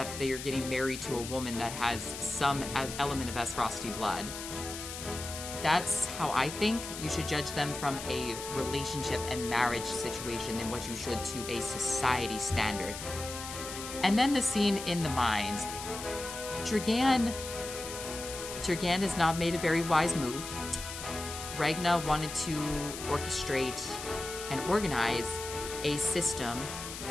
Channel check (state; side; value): noise; left; hiss, 9 dB below the sound